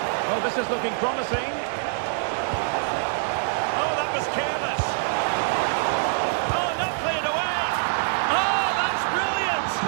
Oh, this is looking promising. Oh, that was careless. Oh, not cleared away. Oh, that's brilliant.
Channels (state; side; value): silent; left; digital silence